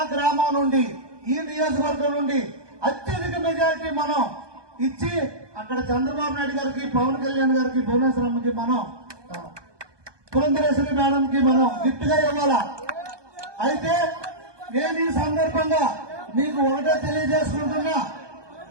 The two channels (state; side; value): late; left; 1.2 ms